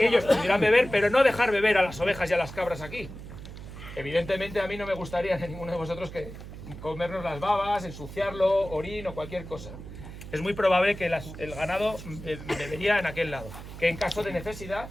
ellos pudieran beber, pero no dejar beber a las ovejas y a las cabras aquí. Evidentemente a mí no me gustaría a ninguno de vosotros que comernos las babas, ensuciarlo, orín o cualquier cosa. Es muy probable que el ganado bebería en aquel lado, que en caso de necesidad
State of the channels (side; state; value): right; noise; hum, 12 dB below the sound